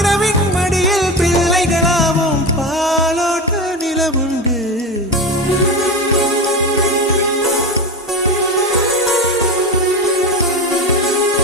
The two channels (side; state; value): both; normal; correlation 0.22